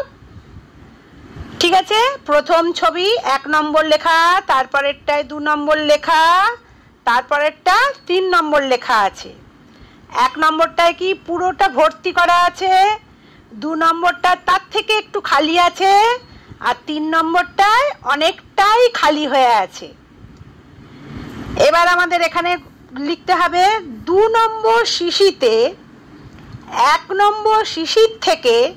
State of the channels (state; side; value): identical; both; correlation 1.00